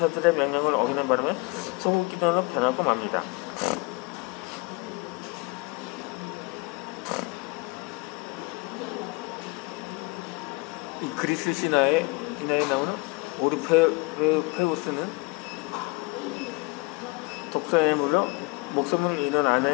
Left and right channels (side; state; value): right; quieter; 24.8 dB